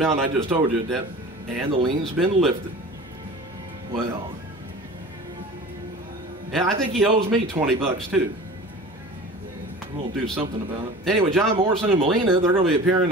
I just told you, that, and the lien's been lifted. Well, yeah, I think he owes me 20 bucks too. We'll do something about it. Anyway, John Morrison and Melina, they're going to be appearing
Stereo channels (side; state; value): both; normal; correlation 0.39